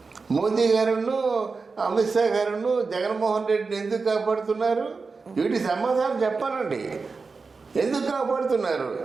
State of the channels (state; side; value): quieter; left; 4.4 dB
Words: మోదీ గారును అమిత్ షా గారును జగన్మోహన్ రెడ్డిని ఎందుకు కాపాడుతున్నారు? వీటి సమాధానం చెప్పాలండి. ఎందుకు కాపాడుతున్నారు?